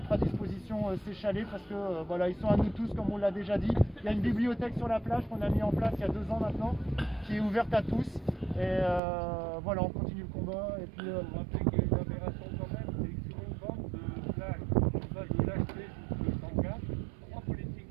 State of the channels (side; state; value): left; drops out; at 9.0 s